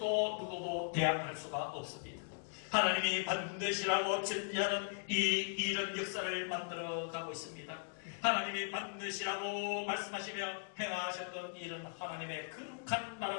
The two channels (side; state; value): right; silent; digital silence